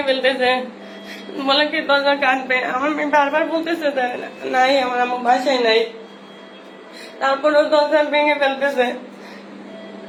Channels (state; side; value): identical; both; correlation 1.00